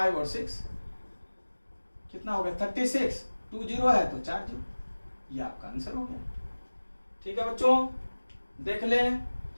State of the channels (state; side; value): inverted; both; correlation -1.00